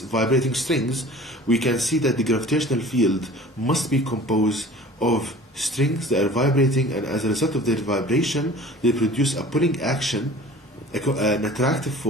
strings, we can see that the gravitational field must be composed of strings that are vibrating, and as a result of their vibration they produce a pulling action, an attractive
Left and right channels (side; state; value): both; normal; correlation 0.44